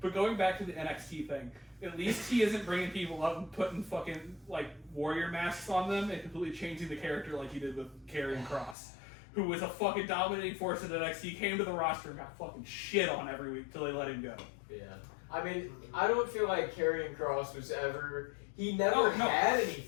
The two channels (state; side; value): drops out; right; at 8.8 s